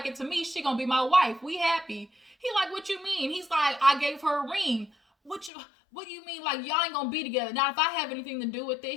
it to me. She gonna be my wife. We happy. He like, what you mean? He's like, I gave her a ring. What do you mean? Like, y'all ain't gonna be together. Now, if I have anything to do with it,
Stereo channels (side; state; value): right; drops out; at 5.5 s